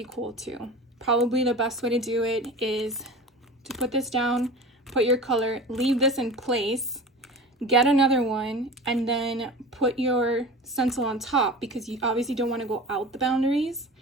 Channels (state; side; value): normal; both; correlation 0.35